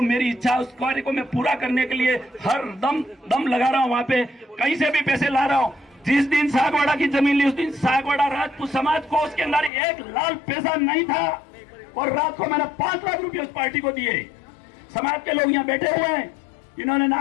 मेरी इच्छा है उस कार्य को मैं पूरा करने के लिए हर दम लगा रहा हूं, वहां पे कहीं से भी पैसे ला रहा हूं। जिस दिन सागवाड़ा की जमीन ली उस दिन सागवाड़ा राजपूत समाज को उसके अंदर एक लाल पैसा नहीं था, और रात को मैंने 5 लाख रुपए उस पार्टी को दिए। समाज के लोग यहाँ बैठे हुए हैं, इन्होंने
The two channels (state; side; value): drops out; right; at 9.7 s